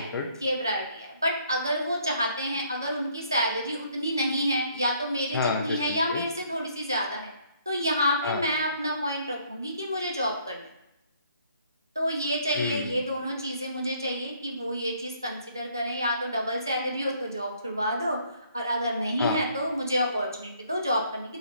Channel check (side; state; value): both; inverted; correlation -0.64